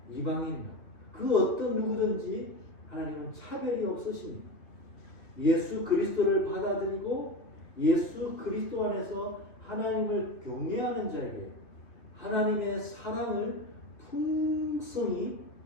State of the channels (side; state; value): right; late; 2.7 ms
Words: 이방인이나 그 어떤 누구든지 하나님은 차별이 없으십니다. 예수 그리스도를 받아들이고 예수 그리스도 안에서 하나님을 경외하는 자에게 하나님의 사랑을 풍성히